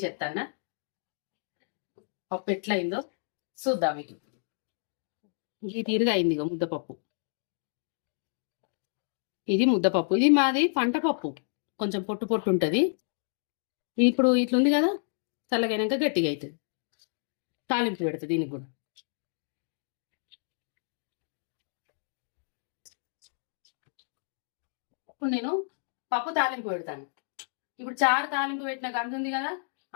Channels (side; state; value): right; silent; digital silence